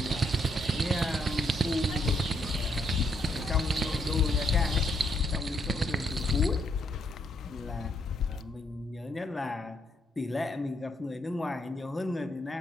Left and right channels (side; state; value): both; normal; correlation 0.74